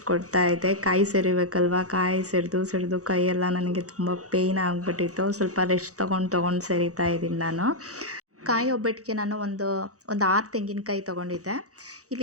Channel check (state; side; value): late; left; 0.66 ms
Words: ಕೊಡ್ತಾ ಇದ್ದೆ. ಕಾಯಿ ಸೆರಿಬೇಕಲ್ವ, ಕಾಯಿ ಸೆರೆದು ಕೈಯೆಲ್ಲ ನನಗೆ ತುಂಬ ಪೇಯ್ನ್ ಆಗಿಬಿಟ್ಟಿತ್ತು. ಸ್ವಲ್ಪ ರೆಸ್ಟ್ ತೊಗೊಂಡು ಸೆರಿತಾ ಇದ್ದೀನಿ ನಾನು. ಕಾಯಿ ಒಬ್ಬಟ್ಟಿಗೆ ನಾನು ಒಂದು 6 ತೆಂಗಿನಕಾಯಿ ತೊಗೊಂಡಿದ್ದೆ.